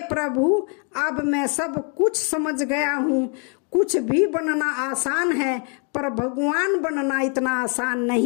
प्रभु, अब मैं सब कुछ समझ गया हूँ। कुछ भी बनना आसान है, पर भगवान बनना इतना आसान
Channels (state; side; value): quieter; right; 39.0 dB